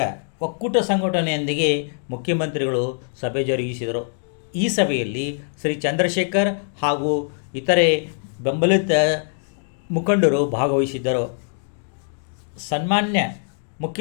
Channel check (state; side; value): silent; right; digital silence